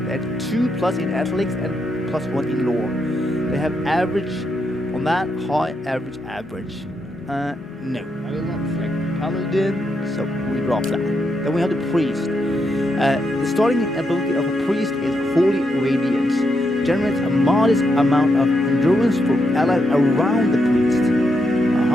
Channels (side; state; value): both; normal; correlation 0.81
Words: They have 2+ in athletics and +1 in lore. They have average on that, high, average, average. No, I will not select Paladin, so we drop that. Then we have the Priest. The starting ability of a Priest is Holy Radiance. Generates a modest amount of endurance for allies around the Priest.